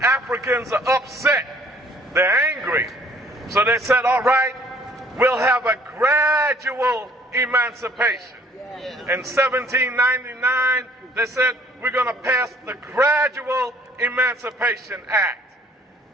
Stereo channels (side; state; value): both; normal; correlation 0.58